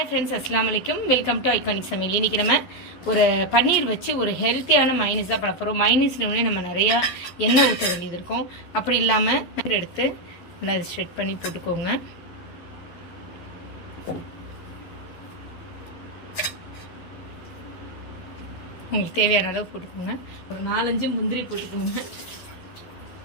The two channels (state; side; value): late; right; 11 ms